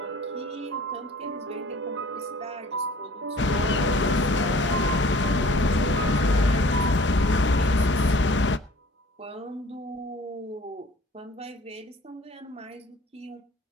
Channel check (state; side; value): normal; both; correlation 0.50